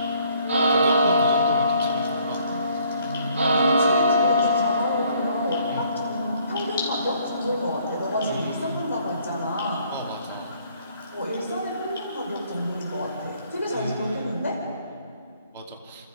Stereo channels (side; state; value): both; inverted; correlation -0.63